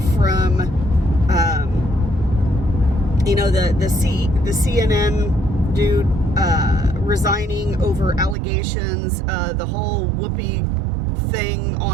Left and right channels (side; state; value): left; drops out; at 8.3 s